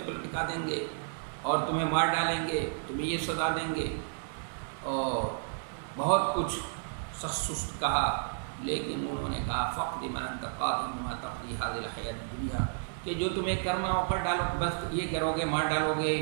پر لٹکا دیں گے اور تمہیں مار ڈالیں گے، تمہیں یہ سزا دیں گے، اور بہت کچھ سخت سست کہا۔ لیکن انہوں نے کہا فقد من انت قاض بما تقضي هذه الحیات الدنیا، کہ جو تمہیں کرنا ہو کر ڈالو، بس یہ کرو گے، مار ڈالو گے،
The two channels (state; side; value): silent; left; 57 dB below the other